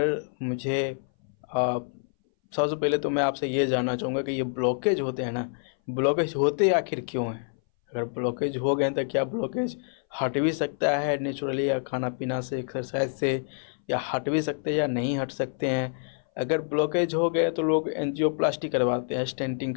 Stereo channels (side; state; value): right; silent; 59 dB below the other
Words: मुझे सबसे पहले तो मैं आपसे ये जानना चाहूँगा कि ये ब्लॉकेज होते हैं ना, ब्लॉकेज होते आखिर क्यों हैं? अगर ब्लॉकेज हो गए तो क्या ब्लॉकेज हट भी सकता है नेचुरली, या खाना पीना से, एक्सरसाइज से, या हट भी सकते हैं या नहीं हट सकते हैं? अगर ब्लॉकेज हो गए तो लोग एंजियोप्लास्टी करवाते हैं, स्टेंटिंग